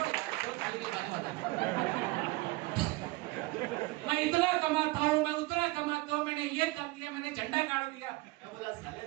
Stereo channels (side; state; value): left; quieter; 21.4 dB